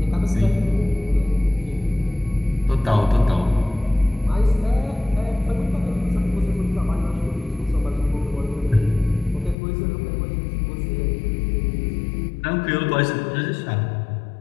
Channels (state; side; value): drops out; right; at 9.6 s